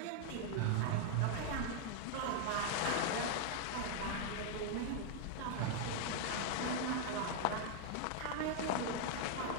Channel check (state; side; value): different; both; correlation 0.00